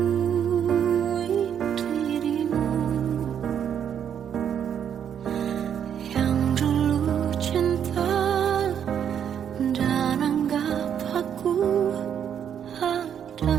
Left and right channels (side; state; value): left; quieter; 8.7 dB